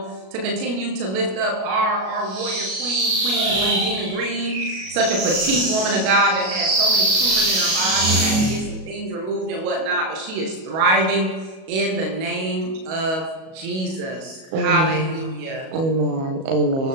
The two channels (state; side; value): late; left; 37 ms